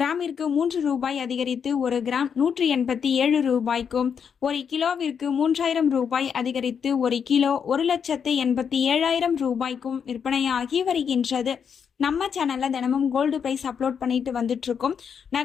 3 ரூபாய் அதிகரித்து ஒரு கிராம் 187 ரூபாய்க்கும், ஒரு கிலோவிற்கு 3000 ரூபாய் அதிகரித்து ஒரு கிலோ 1,87,000 ரூபாய்க்கும் விற்பனையாகி வருகின்றது. நம்ம சேனலில் தினமும் கோல்டு ப்ரைஸ் அப்லோட் பண்ணிட்டு வந்துட்டு இருக்கோம்.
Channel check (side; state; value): right; quieter; 7.1 dB